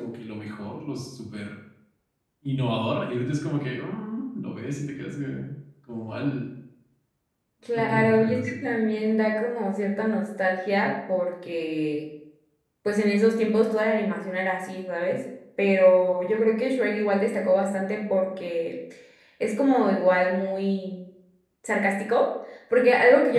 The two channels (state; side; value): identical; both; correlation 1.00